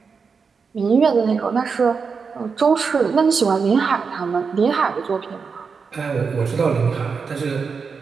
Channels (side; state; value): left; quieter; 5.4 dB